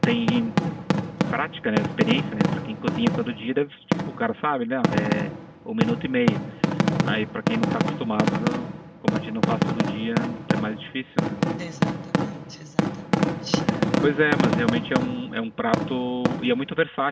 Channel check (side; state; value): both; identical; correlation 1.00